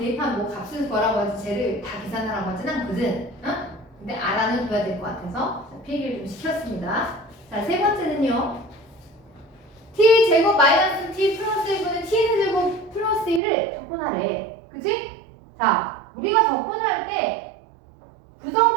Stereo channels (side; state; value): left; drops out; at 13.4 s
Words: 뭐 값을 구하라고 하지 쟤를 다 계산하라고 하진 않거든. 어? 근데 알아는 둬야 될 것 같아서 필기를 좀 시켰습니다. 자, 세 번째는요. t 제곱 마이너스 t 플러스 1분의 t 제곱 플러스 1을 적분하래. 그치? 자, 우리가 적분을 할 때